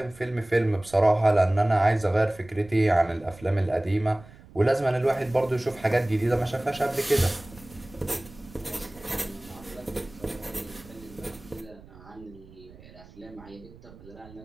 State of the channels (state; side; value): noise; right; rumble, 21 dB below the sound